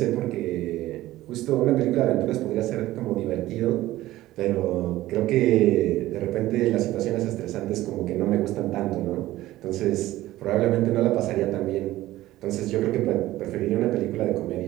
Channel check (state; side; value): quieter; left; 16.0 dB